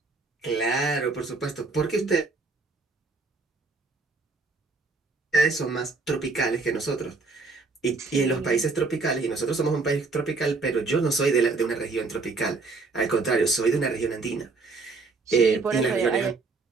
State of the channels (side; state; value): left; quieter; 4.0 dB